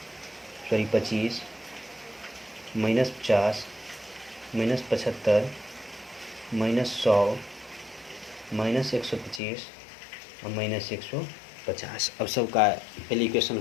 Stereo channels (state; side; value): drops out; right; at 9.4 s